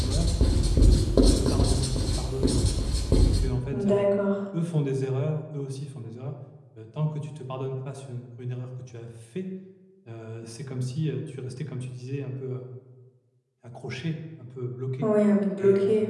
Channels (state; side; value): identical; both; correlation 1.00